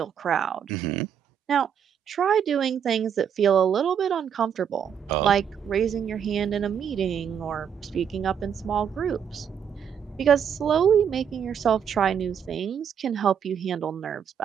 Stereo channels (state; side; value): quieter; left; 8.1 dB